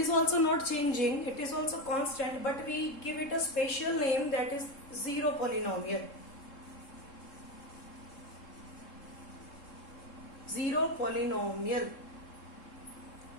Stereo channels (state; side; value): late; right; 3.7 ms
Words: also not changing. It is also constant, but we give it a special name, that is 0 polynomial. 0 polynomial.